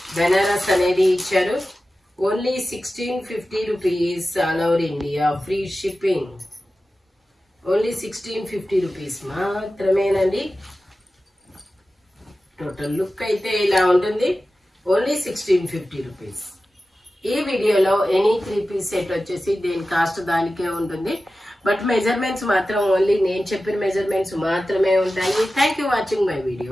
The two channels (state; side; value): normal; both; correlation 0.94